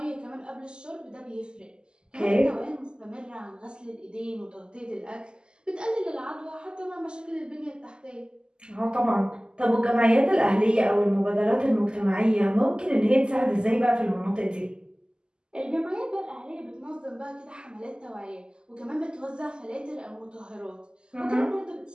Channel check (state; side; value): late; left; 0.047 ms